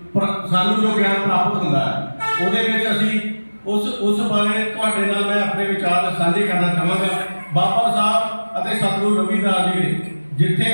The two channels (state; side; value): inverted; both; correlation -1.00